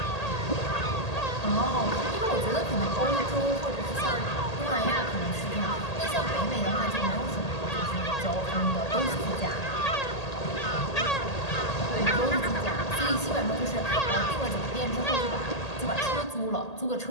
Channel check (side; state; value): right; late; 1.8 ms